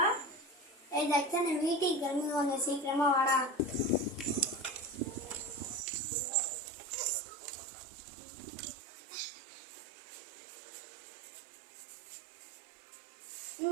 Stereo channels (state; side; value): drops out; left; at 5.9 s